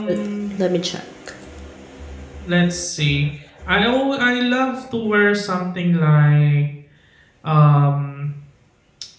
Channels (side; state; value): both; identical; correlation 1.00